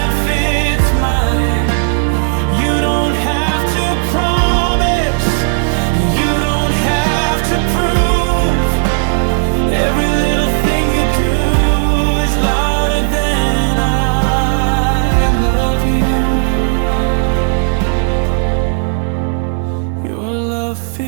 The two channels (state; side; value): silent; left; digital silence